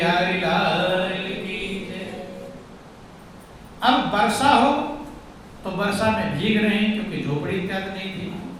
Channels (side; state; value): both; identical; correlation 1.00